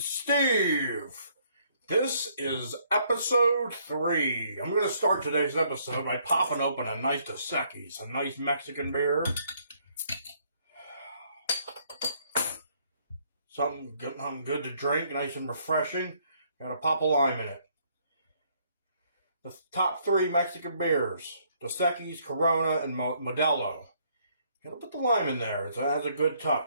This is episode 3. I'm going to start today's episode by popping open a nice Dos Equis, a nice Mexican beer. Something good to drink, nice and refreshing. Got a pop of lime in it. The top 3 Mexican beers: Dos Equis, Corona, and Modelo. Gotta put the lime in there. It has a good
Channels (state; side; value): inverted; both; correlation -0.67